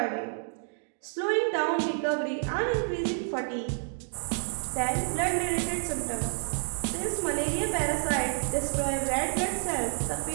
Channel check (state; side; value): silent; left; digital silence